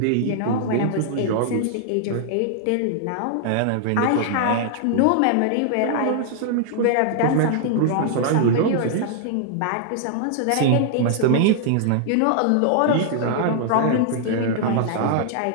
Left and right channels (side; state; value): both; different; correlation -0.01